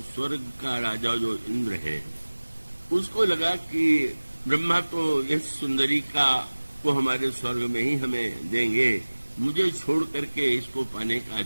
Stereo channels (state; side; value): inverted; both; correlation -1.00